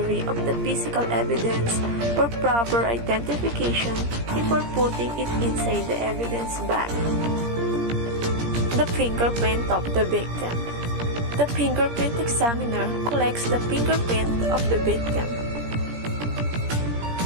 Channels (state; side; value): late; left; 17 ms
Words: of the physical evidence for proper identification before putting it inside the evidence bag. The fingerprint of the victim. The fingerprint examiner collects the fingerprint of the victim.